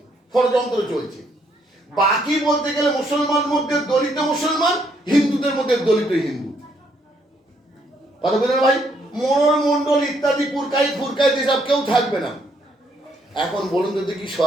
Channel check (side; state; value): both; normal; correlation 0.71